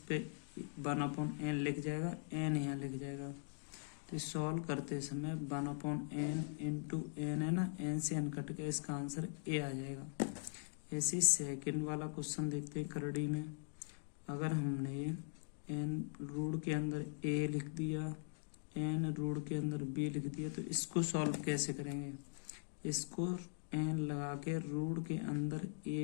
1/n लिख जाएगा, एन यहाँ लिख जाएगा। तो सॉल्व करते समय 1/n इंटू एन है ना, एन से एन कट के इसका आंसर ए आ जाएगा। ऐसे सेकंड वाला क्वेश्चन देखते हैं करड़ी में। अगर हमने एन रूट के अंदर ए लिख दिया, एन रूट के अंदर बी लिख दिया, तो इसको सॉल्व कैसे करेंगे, इसको एन लगा के रूट के अंदर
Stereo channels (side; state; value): right; silent; digital silence